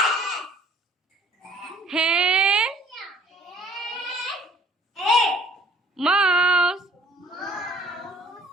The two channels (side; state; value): both; normal; correlation 0.55